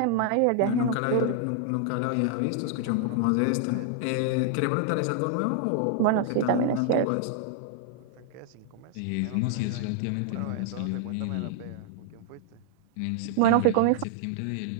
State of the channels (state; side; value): different; both; correlation 0.00